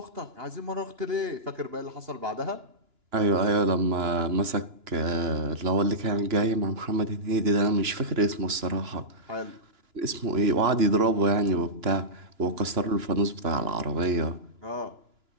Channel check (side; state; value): left; late; 2.9 ms